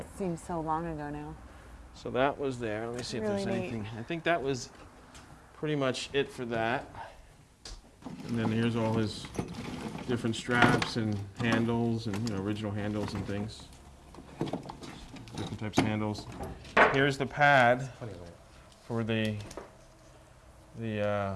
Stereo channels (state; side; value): identical; both; correlation 1.00